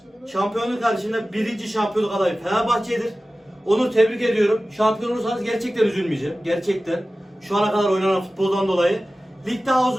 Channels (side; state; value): both; normal; correlation 0.96